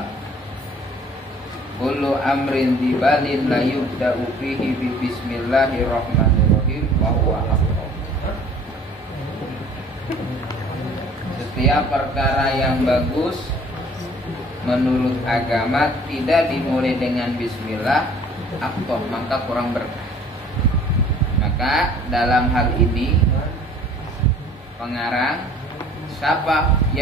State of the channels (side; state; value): both; normal; correlation 0.52